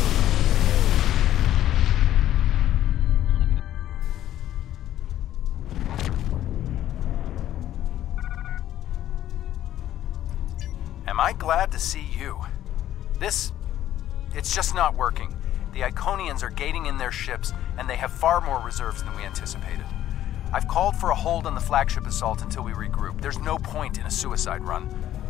Am I glad to see you? It's just not working. The Iconians are gating in their ships, and they have far more reserves than we anticipated. I've called for a hold on the flagship assault until we regroup. There's no point in a suicide run.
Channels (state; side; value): quieter; right; 12.3 dB